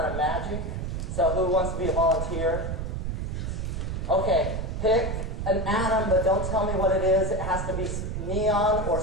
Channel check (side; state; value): right; noise; rumble, 3 dB below the sound